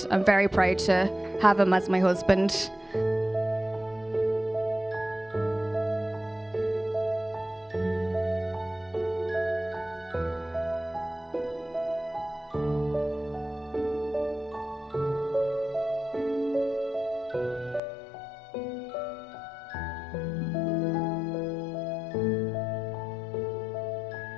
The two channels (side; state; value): right; drops out; at 17.8 s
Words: I'm very proud to have him as my husband.